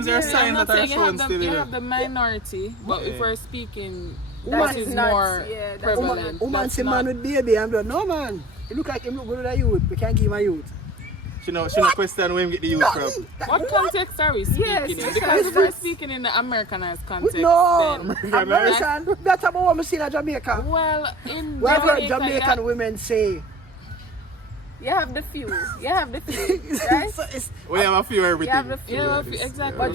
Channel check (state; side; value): normal; both; correlation 0.38